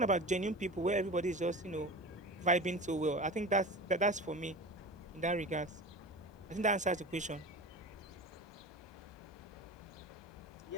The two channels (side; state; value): both; normal; correlation 0.32